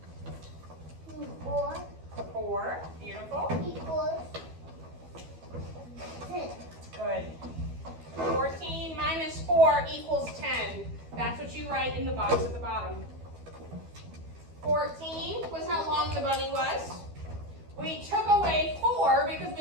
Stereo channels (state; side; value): late; left; 12 ms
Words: was we took away 4 because